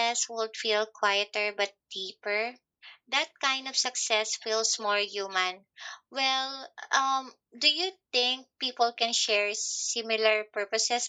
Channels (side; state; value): both; identical; correlation 1.00